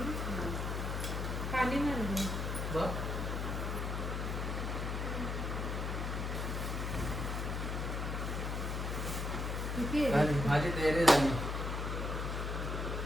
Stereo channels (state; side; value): noise; left; hum, 2 dB below the sound